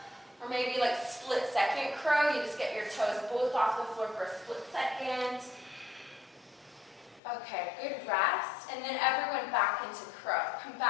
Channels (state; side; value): drops out; right; at 7.2 s